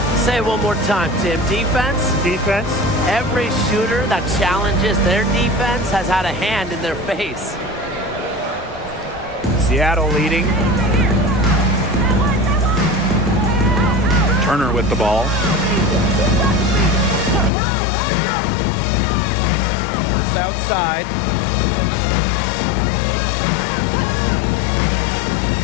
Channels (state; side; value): drops out; right; at 17.5 s